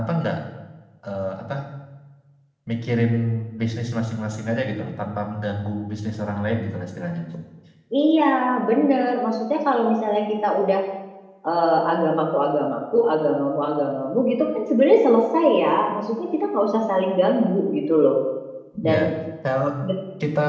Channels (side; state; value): both; identical; correlation 1.00